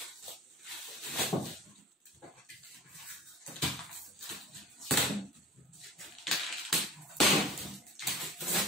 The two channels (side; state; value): both; normal; correlation 0.41